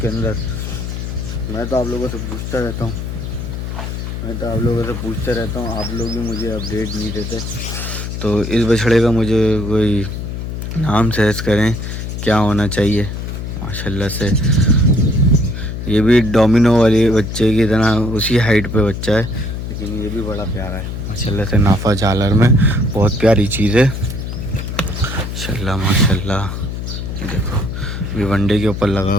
अंदर। मैं तो आप लोगों से पूछता रहता हूँ, आप लोग भी मुझे अपडेट नहीं देते। तो इस बछड़े का मुझे कोई नाम सजेस्ट करें, क्या होना चाहिए। माशाल्लाह से ये भी डोमिनो वाले बच्चे की तरह उसी हाइट पे बच्चा है, लेकिन ये भी बड़ा प्यारा है माशाल्लाह से। नाफा झालर में बहुत प्यारी चीज़ है माशाल्लाह माशाल्लाह। देखो ये वनडे के ऊपर लगा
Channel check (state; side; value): noise; left; hum, 5 dB below the sound